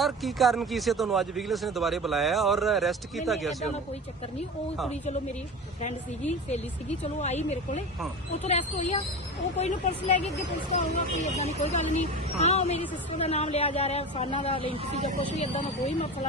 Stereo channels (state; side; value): normal; both; correlation 0.29